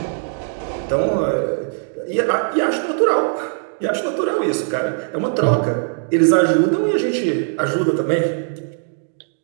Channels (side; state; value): left; silent; digital silence